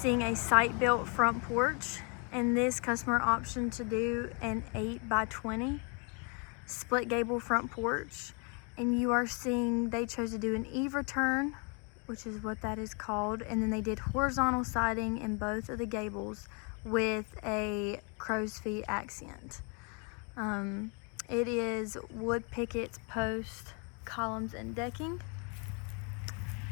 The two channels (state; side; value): quieter; right; 35.6 dB